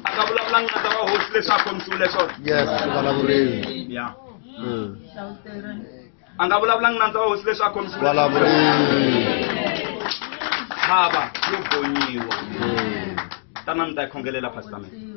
a nga vulavulanga na ta va hosi leswi a khomisiwile swona Yes, vulavuleni. ya a nga vulavulanga na ta va hosi leswi a khomisiwile Vulavuleni. tshava yo gonyiwa tanani mi ta yi khongelela pastor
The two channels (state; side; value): silent; right; digital silence